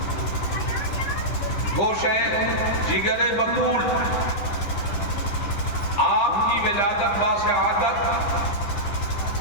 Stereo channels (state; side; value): late; right; 10 ms